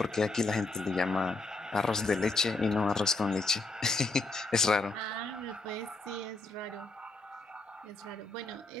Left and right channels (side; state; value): right; quieter; 3.4 dB